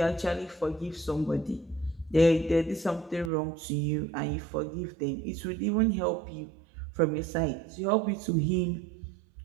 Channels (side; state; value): left; drops out; at 3.3 s